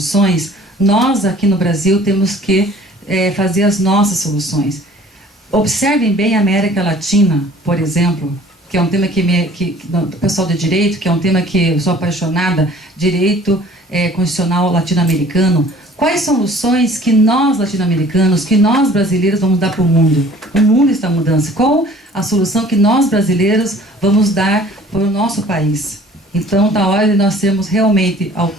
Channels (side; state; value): both; normal; correlation 0.51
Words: nós aqui no Brasil temos que fazer as nossas soluções. Observem bem a América Latina, por exemplo, que é um tema que o pessoal de direito, que é um tema que eu sou apaixonada, direito constitucional latino-americano. Quais soluções que nós latino-americanos, que nós brasileiros vamos dar para o mundo? O mundo está em mudança. Qual a solução que nós brasileiros vamos dar para o nosso país? Então, está a hora de nós sermos realmente